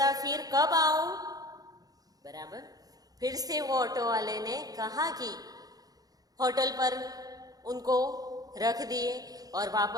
फिर कब आऊं? बराबर। फिर से वो ऑटो वाले ने कहा कि होटल पर उनको रख दिए और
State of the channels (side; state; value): left; late; 0.18 ms